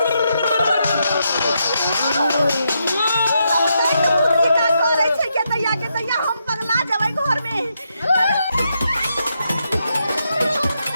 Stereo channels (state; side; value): inverted; both; correlation -0.81